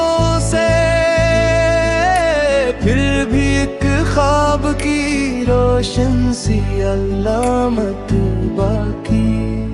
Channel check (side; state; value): both; identical; correlation 1.00